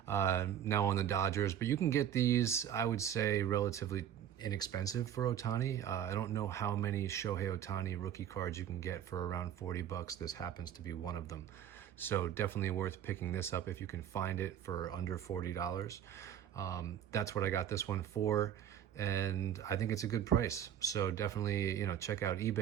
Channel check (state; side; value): quieter; left; 10.1 dB